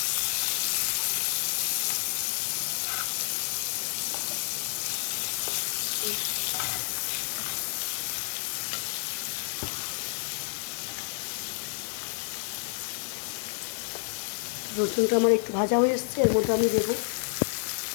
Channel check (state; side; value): silent; right; digital silence